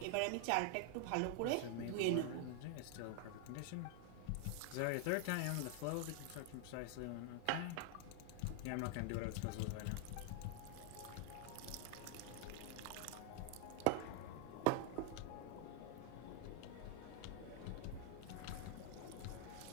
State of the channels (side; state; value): both; different; correlation 0.00